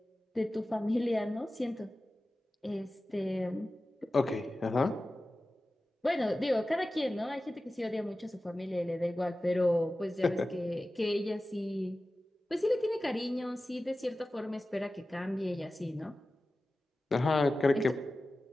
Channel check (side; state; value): both; normal; correlation 0.95